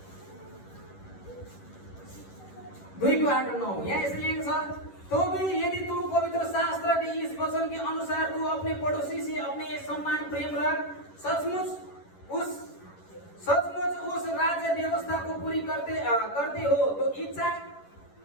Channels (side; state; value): right; late; 11 ms